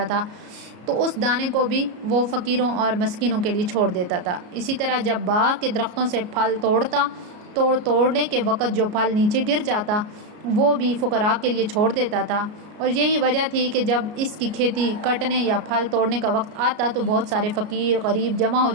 تھا تو اس دانے کو بھی وہ فقیروں اور مسکینوں کے لیے چھوڑ دیتا تھا۔ اسی طرح جب باغ کے درختوں سے پھل توڑنے کے وقت جو پھل نیچے گر جاتا وہ بھی فقراء کے لیے چھوڑ دیتا تھا۔ اور یہی وجہ تھی کہ جب اس کی کھیتی کٹنے یا پھل توڑنے کا وقت آتا تو بہت سارے فقیر غریب جمع ہو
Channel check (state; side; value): late; left; 33 ms